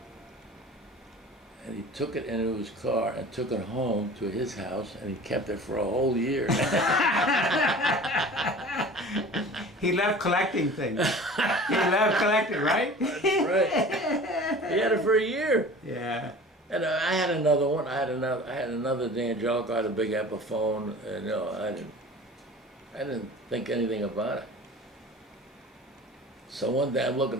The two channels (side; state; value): both; normal; correlation 0.41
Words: and he took it into his car and took it home to his house, and he kept it for a whole year. He loved collecting things. He loved collecting, right? That's right. He had it for a year. Yeah. And I had another one. I had another D'Angelico. I had a big Epiphone, and I didn't think anything about it. So one day I'm looking